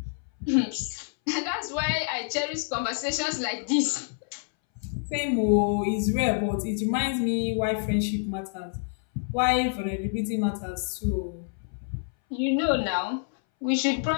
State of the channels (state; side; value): silent; right; 60 dB below the other